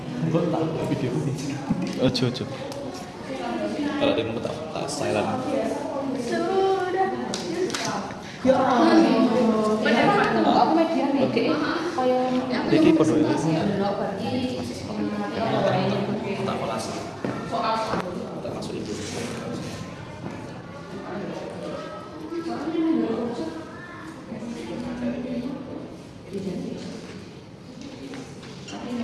Gue tak video ini. Ojo. Kalau dia mau tak silent. Aku media nih. Kayak Iki podo ya. Tak kelas. Tak masuk itu.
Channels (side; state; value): both; identical; correlation 1.00